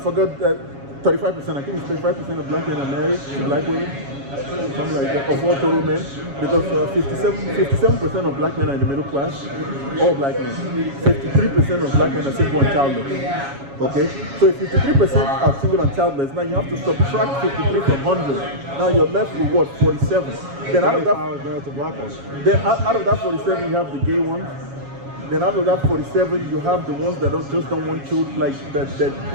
that 35%, I think it's 35% of black men are married to black women. Something like that, of all total men, because 57% of black men are in the middle class, all black men. 53% of black men are single and childless. Okay? So if 53% are single and childless, now you have to subtract 53 from 100. Now you're left with what? 47. Then out of that 47 you have the gay ones. Then out of that 47, you have the ones that don't want children, like that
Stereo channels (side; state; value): left; late; 7.2 ms